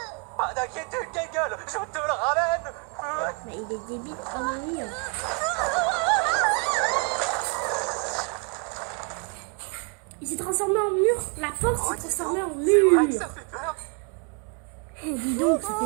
Pas d'inquiétude, Gengal, je te le ramène. Mais il est débile. Oh oui. Il s'est transformé en mur. La porte Oh, s'est dis transformée en donc, c'est vrai que mur. ça fait peur. Eh, dis donc, ça fait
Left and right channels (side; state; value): left; quieter; 34.3 dB